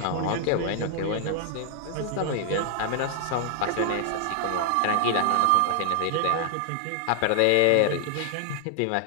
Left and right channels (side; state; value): both; different; correlation -0.01